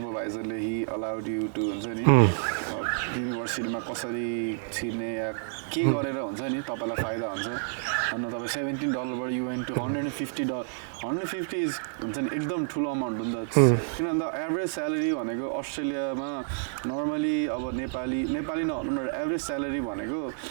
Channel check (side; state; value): left; silent; digital silence